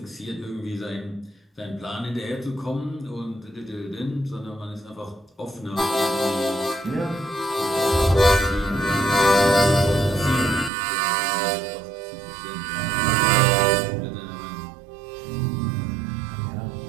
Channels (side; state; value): left; drops out; at 10.7 s